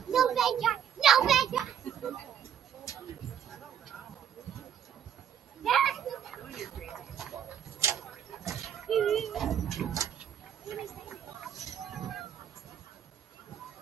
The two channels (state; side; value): quieter; left; 9.1 dB